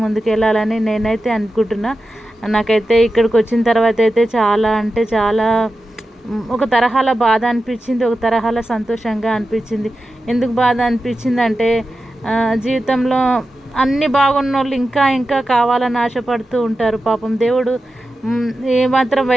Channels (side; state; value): both; normal; correlation 0.92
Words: ముందుకెళ్ళాలని నేనైతే అనుకుంటున్నా. నాకైతే ఇక్కడికి వచ్చిన తర్వాత అయితే చాలా అంటే చాలా ఒక తరహాల బాధ అనిపించింది, ఒక తరహాల సంతోషంగా అనిపించింది. ఎందుకు బాధ అనిపించింది అంటే జీవితంలో అన్నీ బాగున్న వాళ్ళు ఇంకా ఇంకా కావాలని ఆశపడుతూ ఉంటారు. పాపం దేవుడు ఏమాత్రం